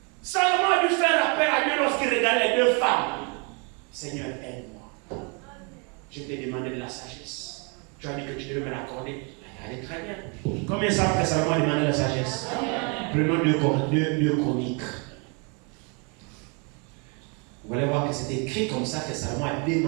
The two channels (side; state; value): left; quieter; 34.5 dB